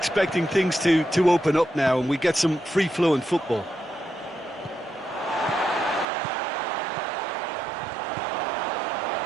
things to open up now and we get some free-flowing football.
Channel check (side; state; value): left; drops out; at 6.1 s